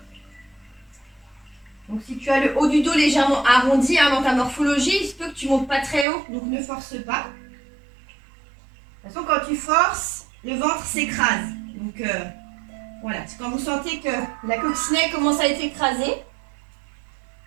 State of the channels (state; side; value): drops out; left; at 6.1 s